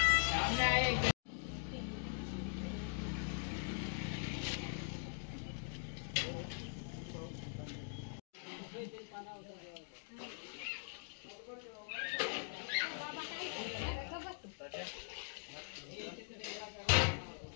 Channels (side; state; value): right; silent; digital silence